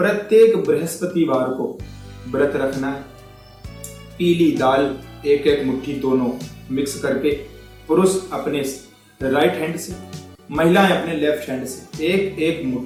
बृहस्पतिवार को व्रत रखना है। पीली दाल 1-1 मुट्ठी दोनों मिक्स करके, पुरुष अपने राइट हैंड से, महिलाएं अपने लेफ्ट हैंड से 1-1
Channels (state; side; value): identical; both; correlation 1.00